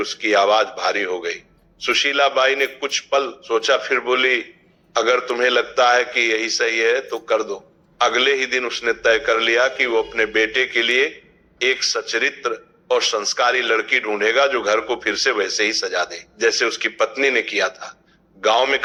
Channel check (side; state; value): both; identical; correlation 1.00